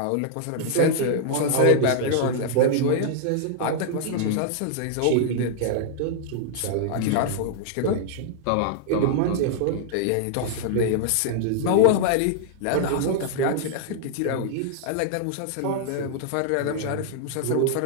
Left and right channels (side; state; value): both; different; correlation -0.01